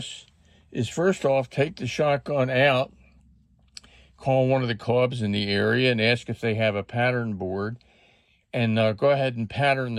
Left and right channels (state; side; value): identical; both; correlation 1.00